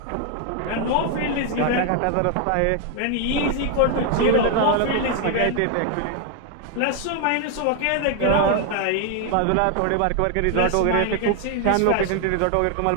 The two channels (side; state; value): both; different; correlation 0.00